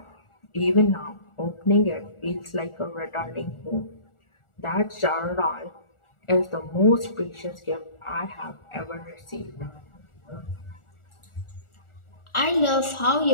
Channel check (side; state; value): right; late; 1.4 ms